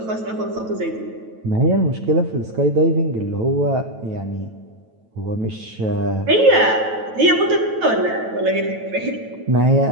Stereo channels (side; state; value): left; late; 9.1 ms